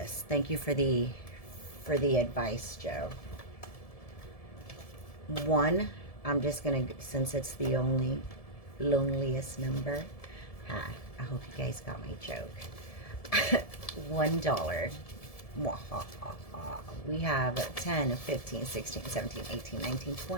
Thank you for the advice, Joe. 1, I'm just gonna, since it's the only loneliest number. I hope you guys got my joke. $1. We have 10, 15, 16, 17, 18, 19,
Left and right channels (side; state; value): right; late; 1.7 ms